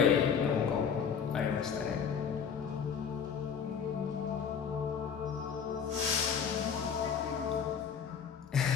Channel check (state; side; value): quieter; right; 7.0 dB